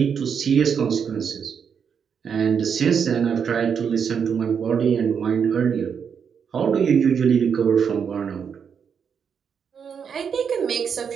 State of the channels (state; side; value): quieter; left; 7.0 dB